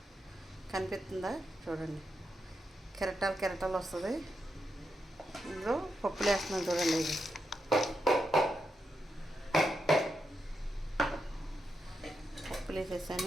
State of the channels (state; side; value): normal; both; correlation 0.85